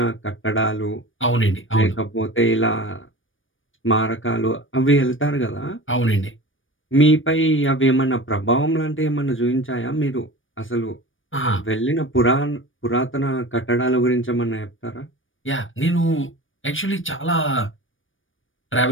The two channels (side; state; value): right; late; 0.57 ms